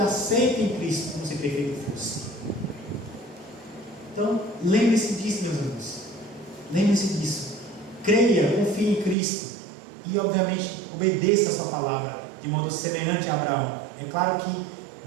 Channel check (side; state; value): left; drops out; at 9.2 s